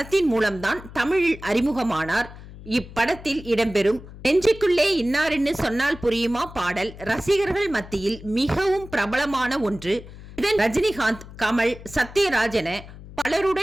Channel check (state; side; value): noise; left; hum, 16 dB below the sound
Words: மூலம்தான் தமிழில் அறிமுகமானார். இப்படத்தில் இடம்பெறும் நெஞ்சுக்குள்ளே இன்னார்னு சொன்னால் புரியுமா பாடல் ரசிகர்கள் மத்தியில் மிகவும் பிரபலமான ஒன்று. இதன் ரஜினிகாந்த், கமல், சத்யராஜ் என